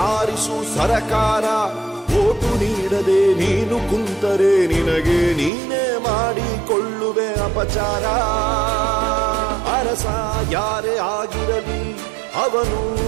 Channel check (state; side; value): drops out; left; at 5.5 s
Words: ಆರಿಸು ಸರಕಾರ. ವೋಟು ನೀಡದೆ ನೀನು ಕುಂತರೆ ನಿನಗೆ ನೀನೇ ಮಾಡಿಕೊಳ್ಳುವೆ ಅಪಚಾರ. ಅರಸ ಯಾರೇ ಆಗಿರಲಿ ಅವನು